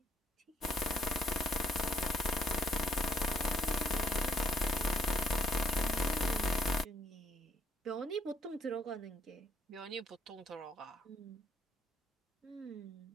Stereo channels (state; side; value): normal; both; correlation 0.71